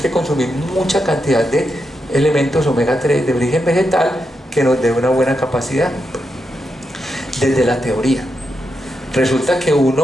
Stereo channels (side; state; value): both; normal; correlation 0.85